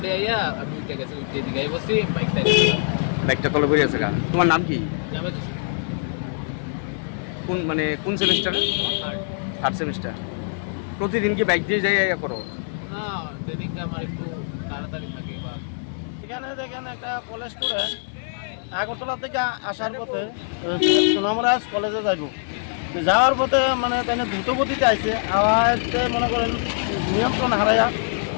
আইয়া আমি উঠে গেছি উঠে দিকে বসি বাইকটা তলে পড়ে আছে কা তোমার নাম কি যাবে তো কোন মানে কোন সেমিস্টারে থার্ড সেমিস্টার প্রতিদিন কি বাইক দিয়ে যাই করো না সেদিনকে আমার একটু তাড়াতাড়ি থাকে বা এখানে দেখেন একটা কলেজ স্টুডেন্ট আগরতলা থেকে আসার পথে সোনামরাজ কলেজে যাইব যাওয়ার পথে মানে তাই দ্রুত গতিতে আইছে আওয়াজতে মনে করেন নিয়ন্ত্রণ হারাইয়া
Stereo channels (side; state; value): right; silent; 63 dB below the other